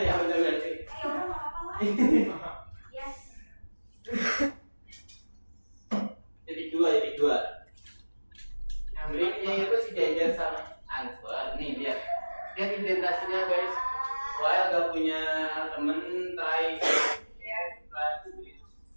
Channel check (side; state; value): both; inverted; correlation -1.00